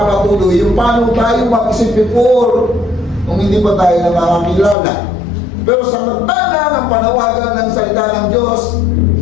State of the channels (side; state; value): right; drops out; at 4.8 s